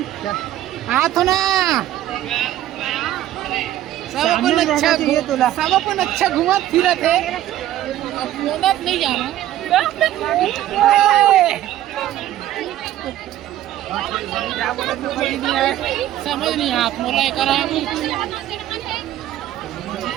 हाथ ना सब अपन अच्छा घुमा फिरा थे। अब मोनत नहीं जाना समझ नहीं हाथ मोला करा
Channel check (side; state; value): left; quieter; 13.3 dB